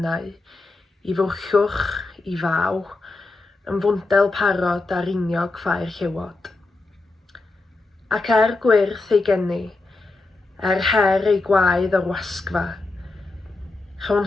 i fwrchwch, i faw, yn fwndel parod a riniog ffair llewod. Ac gwyrth ei geni, her ei gwaedd o'r wasgfa, rhawn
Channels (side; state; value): right; quieter; 3.4 dB